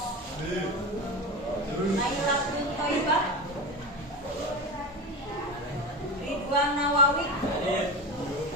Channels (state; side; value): normal; both; correlation 0.24